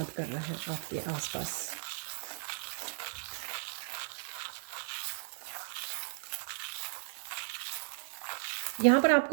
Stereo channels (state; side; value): silent; left; 54 dB below the other